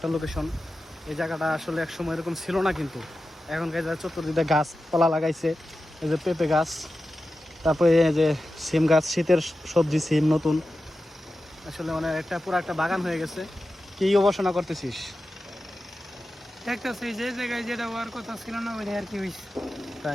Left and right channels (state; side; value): normal; both; correlation 0.93